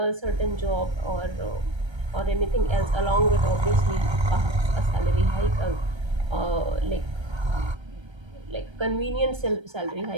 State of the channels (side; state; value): left; late; 1.3 ms